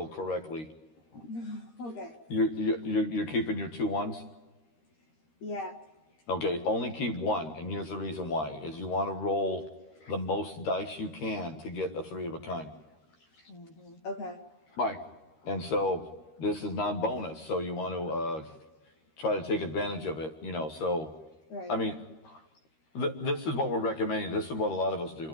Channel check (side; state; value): right; late; 13 ms